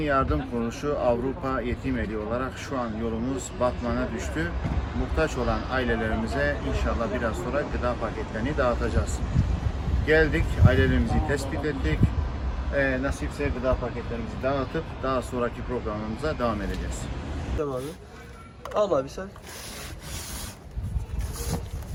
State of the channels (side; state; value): both; identical; correlation 1.00